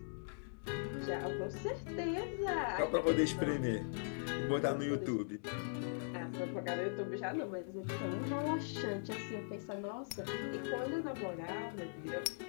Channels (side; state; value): right; silent; digital silence